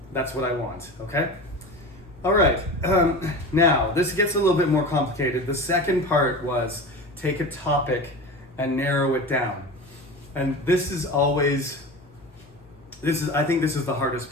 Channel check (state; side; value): normal; both; correlation 0.30